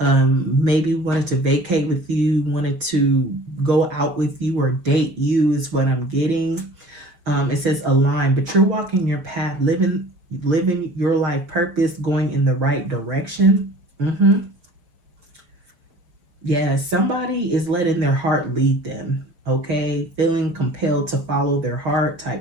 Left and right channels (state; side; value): late; left; 5.7 ms